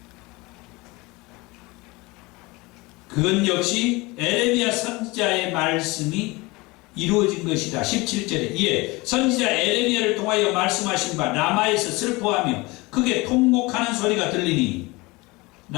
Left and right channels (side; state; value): right; quieter; 23.5 dB